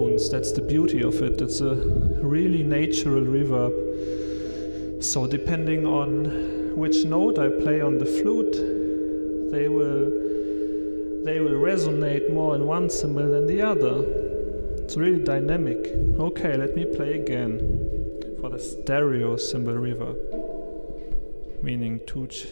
That's the beauty of it. It's a really natural reverb. So depending on which note I play on the flute, they will resonate more in one cymbal than the other. It's really dynamic. Okay, let me play again for the stereo cymbal reverb, meaning two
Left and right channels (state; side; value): inverted; both; correlation -1.00